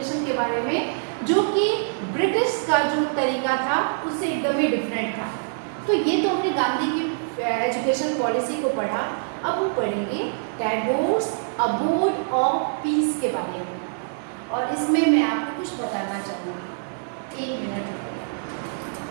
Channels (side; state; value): left; silent; 62 dB below the other